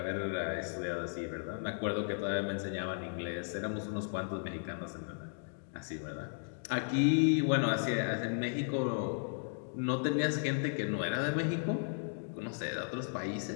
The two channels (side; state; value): right; silent; digital silence